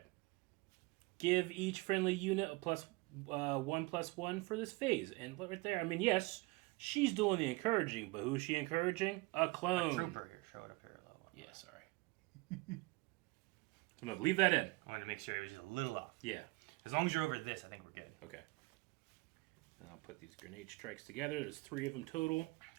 Give each friendly unit a +1/+1 for this phase. And look right there. I mean, yes, she's doing the encouraging, but who's she encouraging? A clone. A trooper here. Show it up here a little. Yeah, sorry. So I'm going to leave that in. I wanted to make sure it was just a little off. Yeah. As long as you're over this, I think we're good. Okay. And I'll put these grenade strikes together. There's 3 of them total.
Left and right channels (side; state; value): left; quieter; 23.9 dB